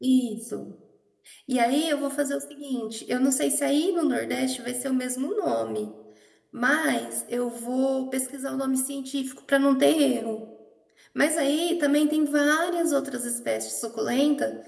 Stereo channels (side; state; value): both; identical; correlation 1.00